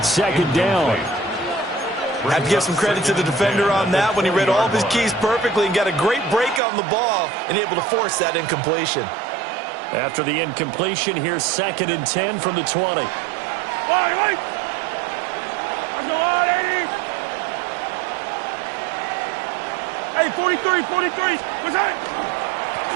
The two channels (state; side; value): drops out; left; at 6.6 s